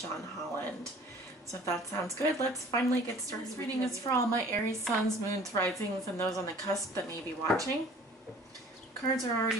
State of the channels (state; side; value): normal; both; correlation 0.49